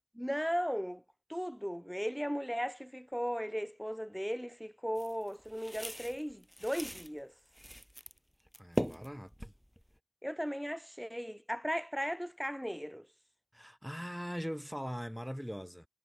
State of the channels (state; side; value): identical; both; correlation 1.00